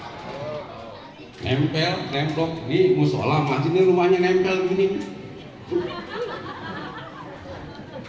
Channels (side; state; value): both; identical; correlation 1.00